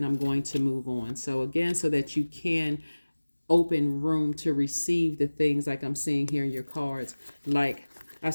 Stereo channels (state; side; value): inverted; both; correlation -1.00